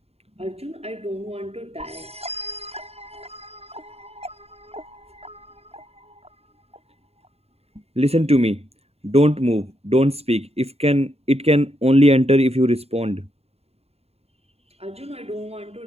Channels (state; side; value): late; left; 0.30 ms